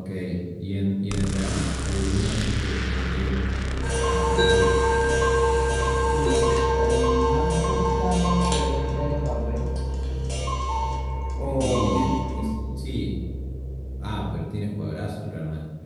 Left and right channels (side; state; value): both; identical; correlation 1.00